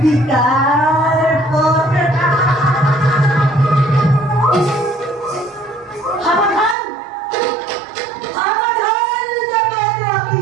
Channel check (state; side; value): drops out; left; at 6.8 s